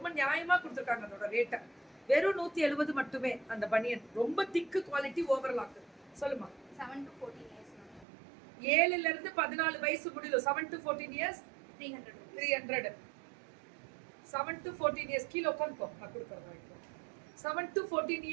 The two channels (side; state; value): left; drops out; at 8.1 s